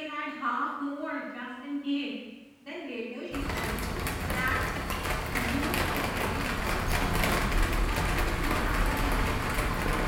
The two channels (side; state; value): both; identical; correlation 1.00